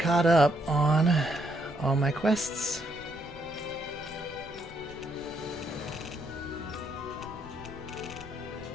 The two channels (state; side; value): noise; left; rumble, 20 dB below the sound